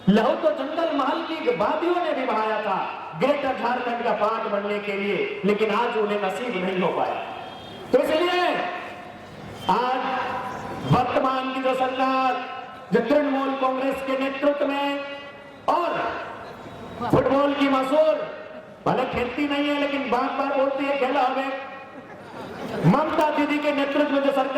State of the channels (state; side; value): identical; both; correlation 1.00